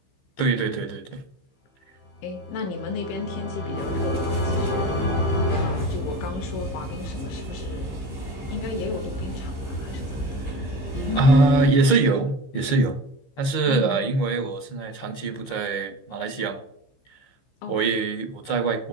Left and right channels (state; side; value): late; right; 15 ms